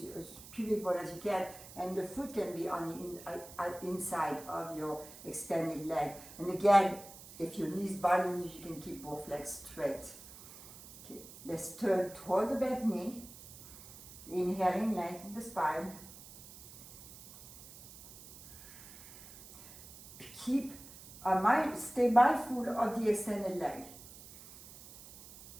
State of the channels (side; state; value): right; noise; hiss, 17 dB below the sound